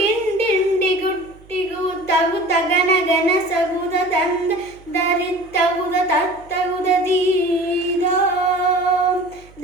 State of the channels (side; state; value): right; noise; hum, 25 dB below the sound